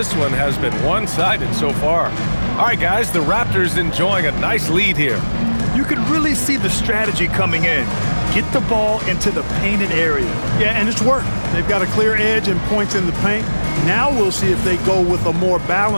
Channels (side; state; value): both; inverted; correlation -1.00